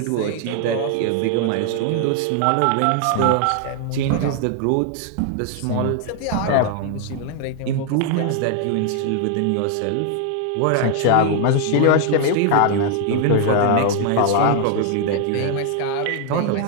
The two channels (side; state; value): both; different; correlation 0.00